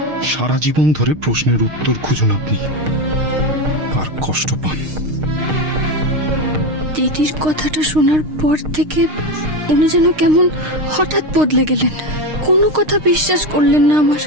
সারা জীবন ধরে প্রশ্নের উত্তর খুঁজুন আপনি, আর কষ্ট পান। দিদির কথাটা শোনার পর থেকে উনি যেন কেমন হঠাৎ বদলে গেলেন, কোনো কথা বিশ্বাস করলেন না আমার।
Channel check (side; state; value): left; late; 6.5 ms